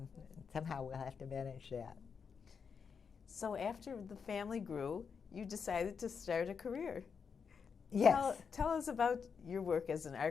Somehow we'll have to manage that. So after the family grew, you decided to start a career. Yes. Tell us about your work as an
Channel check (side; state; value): right; quieter; 6.1 dB